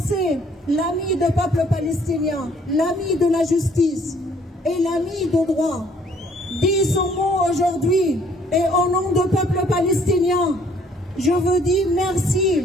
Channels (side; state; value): both; normal; correlation 0.62